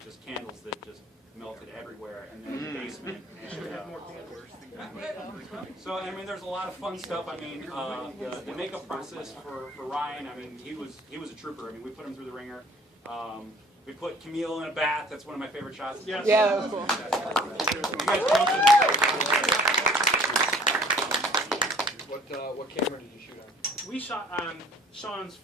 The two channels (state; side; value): normal; both; correlation 0.53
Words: candles that just melted everywhere, and then in the basement. And, so I mean, there's a lot of fun stuff. I mean, the makeup process for Ryan. I mean, he was a trooper. I mean, we put him through the ringer. We put Camille in a bath. That's one of my favorite shots. Yeah, that was cool. What camera did you shoot on? We shot on Sean's